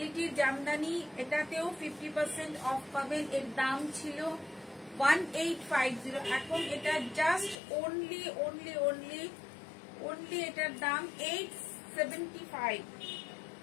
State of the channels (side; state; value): right; drops out; at 7.6 s